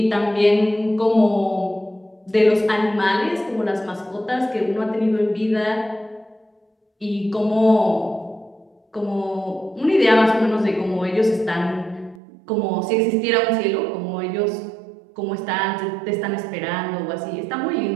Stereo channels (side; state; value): left; drops out; at 12.2 s